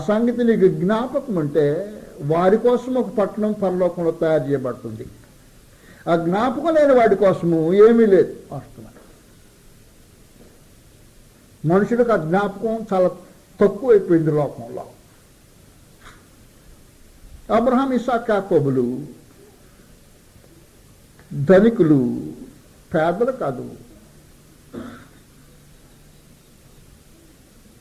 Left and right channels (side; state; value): both; identical; correlation 1.00